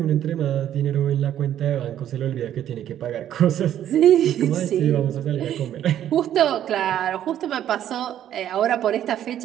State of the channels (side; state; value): left; quieter; 11.0 dB